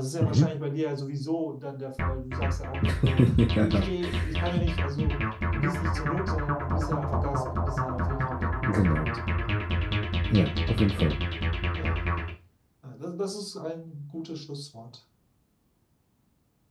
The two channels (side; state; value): both; identical; correlation 1.00